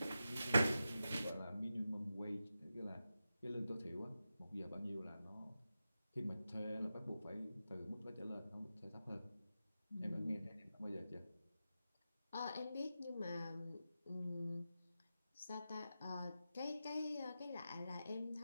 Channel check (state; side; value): inverted; both; correlation -0.91